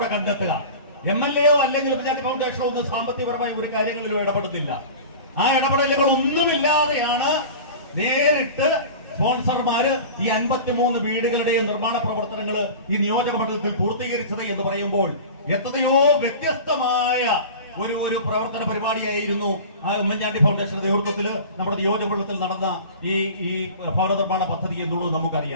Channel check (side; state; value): both; inverted; correlation -0.35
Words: കണ്ടെത്തുക. MLA അല്ലെങ്കിൽ പഞ്ചായത്ത് ഫൗണ്ടേഷനോ ഒന്നും സാമ്പത്തികപരമായി ഒരു കാര്യങ്ങളിലും ഇടപെടുന്നില്ല. ആ ഇടപെടലുകൾ ഒന്നുമില്ലാതെയാണ് നേരിട്ട് സ്പോൺസർമാര് ഈ 53 വീടുകളുടെയും നിർമ്മാണ പ്രവർത്തനങ്ങൾ ഈ നിയോജക മണ്ഡലത്തിൽ പൂർത്തീകരിച്ചത് എന്ന് പറയുമ്പോൾ എത്രയോ വ്യത്യസ്തമായ ഒരു പ്രവർത്തന പരിപാടിയായിരുന്നു ആ ഉമ്മൻചാണ്ടി ഫൗണ്ടേഷൻ നേതൃത്വത്തിൽ നമ്മുടെ നിയോജക മണ്ഡലത്തിൽ നടന്ന ഈ ഭവന നിർമ്മാണ പദ്ധതി എന്നുള്ളത്